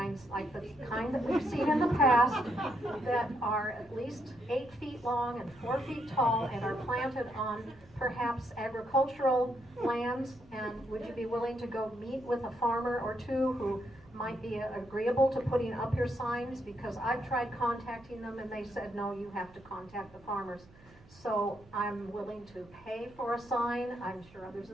like the kind that we've seen in the past, that are at least 8 feet long and 4 feet tall and are planted on perhaps agricultural lands. And would you be willing to go meet with a farmer or two who might be agreeable to putting up your signs? Because I've tried contacting them and they said, no, you have to contact the farmers. So I'm willing to pay for a sign. I'm sure others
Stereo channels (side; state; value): right; noise; hum, 26 dB below the sound